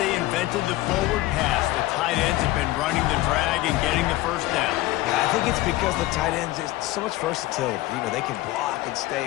invented the forward pass, the tight ends have been running the drag and getting the first down. I think it's because the tight ends is so much versatility. You know, they can block and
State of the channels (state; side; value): quieter; right; 17.3 dB